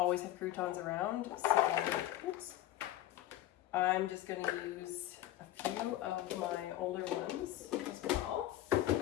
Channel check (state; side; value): quieter; right; 14.4 dB